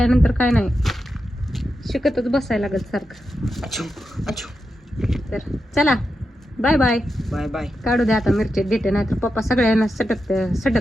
काय नाही, शिकतच बसायला लागत सारखं. अच्छू अच्छू. तर चला बाय बाय. Bye bye. काढू द्या आता मिरच्या देते, नाही तर पप्पा सगळ्यांना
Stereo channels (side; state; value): both; normal; correlation 0.88